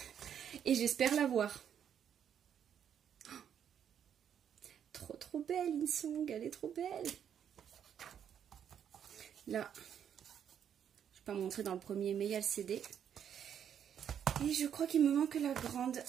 Et j'espère l'avoir. Trop belle, Insong, elle est trop belle. Là, je ne vais pas montrer dans le premier, mais il y a le CD. Et je crois qu'il me manque la grande.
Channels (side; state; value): left; quieter; 8.8 dB